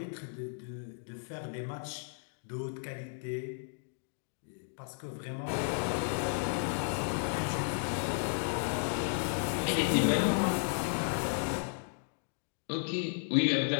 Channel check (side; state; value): right; silent; digital silence